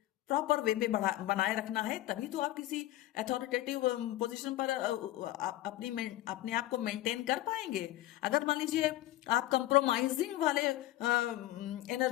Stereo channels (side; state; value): right; quieter; 15.3 dB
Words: प्रॉपर वे में बनाए रखना है, तभी तो आप किसी अथॉरिटेटिव पोजीशन पर अपने आप को मेंटेन कर पाएंगे। अगर मान लीजिए आप कंप्रोमाइजिंग वाले